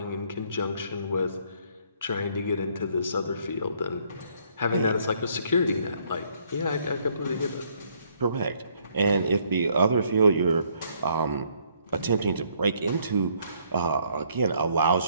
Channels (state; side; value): inverted; both; correlation -0.67